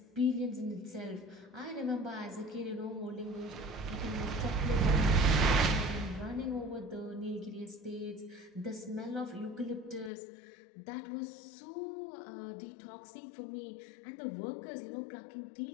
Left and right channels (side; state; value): right; drops out; at 10.1 s